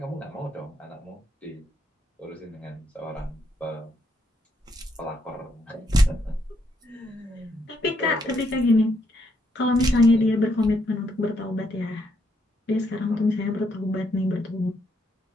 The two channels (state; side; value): normal; both; correlation 0.75